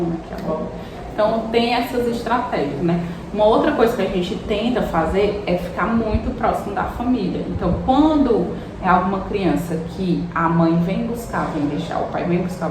aqui a bola. Então tem essas estratégias, né? Uma outra coisa que a gente tenta fazer é ficar muito próximo da família. Então quando é alguma criança que a mãe vem buscar, vem deixar, o pai vem buscar,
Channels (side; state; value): both; identical; correlation 1.00